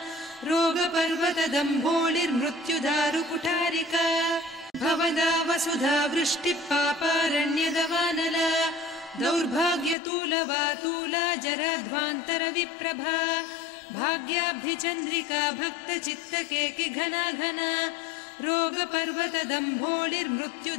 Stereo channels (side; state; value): right; drops out; at 10.0 s